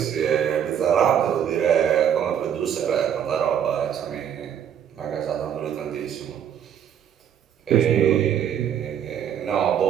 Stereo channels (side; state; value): left; quieter; 9.0 dB